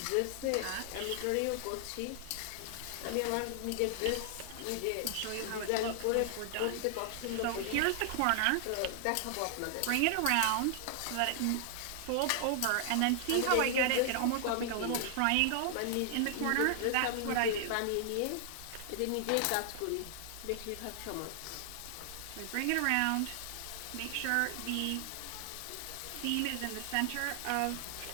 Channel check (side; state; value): both; different; correlation 0.00